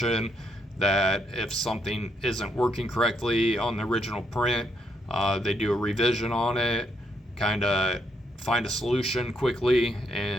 that if something isn't working correctly on the original print, they do a revision on it, kind of find a solution quickly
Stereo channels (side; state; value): both; normal; correlation 0.75